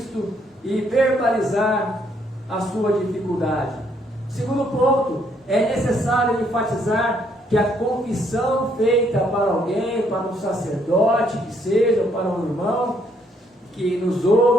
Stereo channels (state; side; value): normal; both; correlation 0.70